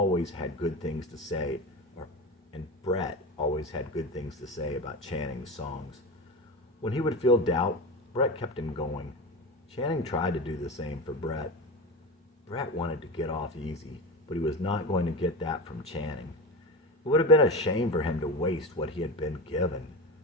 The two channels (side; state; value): both; normal; correlation 0.24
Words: had good things to say, and Brett always had good things to say about Channing's songs. When he would feel doubt, Brett kept him going. Channing tried to do the same for Brett. Brett wanted to get off easy, but he was not going to get that from Channing. It would have been a shame for him to waste what he had been given,